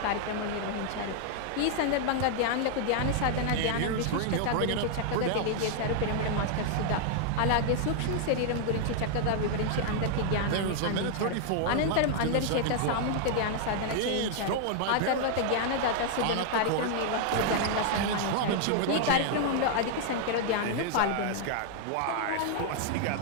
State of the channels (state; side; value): different; both; correlation 0.00